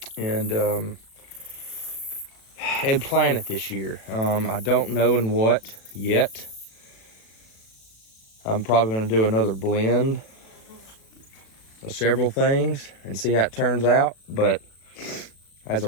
and plant it this year. I don't know in what yet. I'm probably gonna do another blend of several things and see how it turns out. But as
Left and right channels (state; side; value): late; right; 36 ms